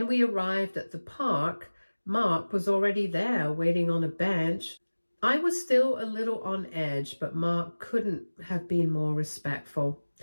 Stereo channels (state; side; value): inverted; both; correlation -1.00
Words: we arrived at the park, Mark was already there, waiting on a bench. I was still a little on edge, but Mark couldn't have been more respectful.